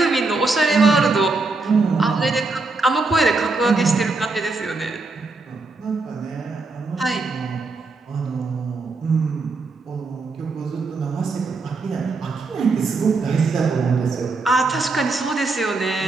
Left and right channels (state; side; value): quieter; left; 3.7 dB